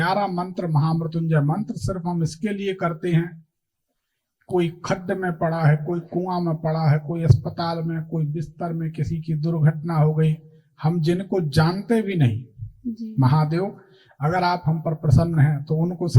मंत्र, महामृत्युंजय मंत्र सिर्फ हम इसके लिए करते हैं, कोई खड्ड में पड़ा है, कोई कुआं में पड़ा है, कोई अस्पताल में, कोई बिस्तर में किसी की दुर्घटना हो गई, हम जिनको जानते भी नहीं, महादेव अगर आप हम पर प्रसन्न हैं तो उनको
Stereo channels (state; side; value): identical; both; correlation 1.00